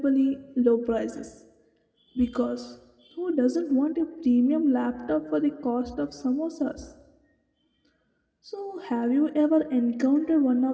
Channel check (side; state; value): both; identical; correlation 1.00